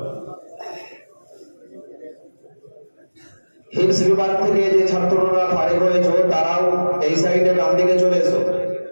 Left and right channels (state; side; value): inverted; both; correlation -1.00